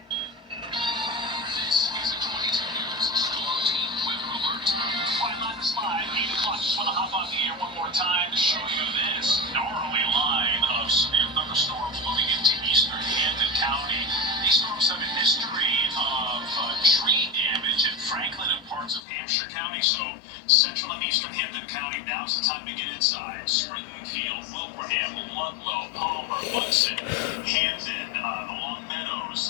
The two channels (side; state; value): right; drops out; at 19.0 s